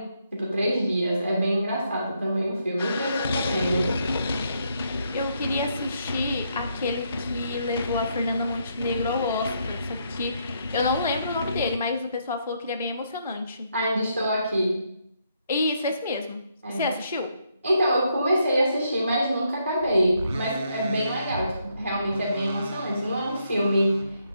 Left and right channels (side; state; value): both; inverted; correlation -0.76